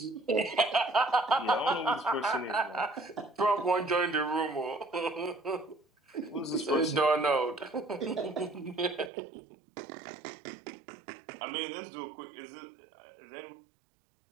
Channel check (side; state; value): left; drops out; at 9.1 s